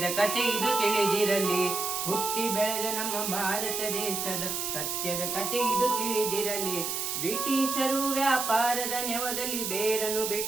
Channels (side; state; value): right; noise; hiss, 2 dB below the sound